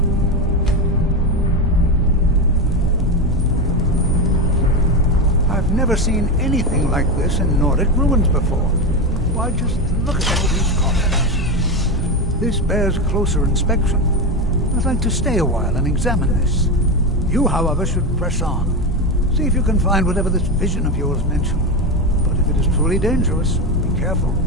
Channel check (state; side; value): normal; both; correlation 0.15